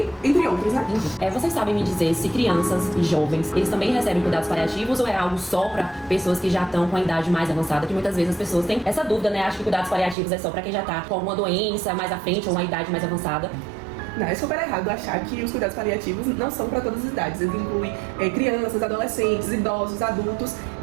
entre outros, né? Vocês sabem me dizer se crianças e jovens, eles também recebem cuidados paliativos ou é algo só para pessoas que já estão com a idade mais avançada, que muitas vezes as pessoas têm essa dúvida, né? Acho que cuidados paliativos é só para quem já tá com alguma doença mais à frente ou uma idade mais avançada. Não, é super errado achar que os cuidados paliativos não são para todas as idades. Eles incluem crianças, adolescentes, idosos, adultos.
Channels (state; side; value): drops out; left; at 10.2 s